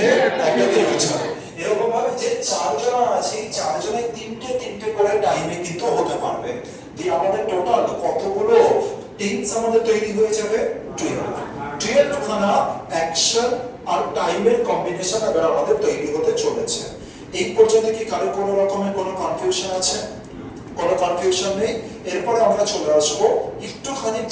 একটা ফিউচারে। এরকম ভাবে যে 4 জন আছে, 4 জনের 3টে করে টাইমে কিন্তু হতে পারবে। দিয়ে আমাদের টোটাল কতগুলো টেন্স আমাদের তৈরি হয়ে যাবে? 12 খানা অ্যাকশন আর টাইমের কম্বিনেশন এবার আমাদের তৈরি হতে চলেছে। এই পর্যন্ত কি কারো কোনো রকমের কোনো কনফিউশন আছে? কোনো কনফিউশন নেই। এরপরে আমরা চলে আসবো একটুখানি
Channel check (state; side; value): identical; both; correlation 1.00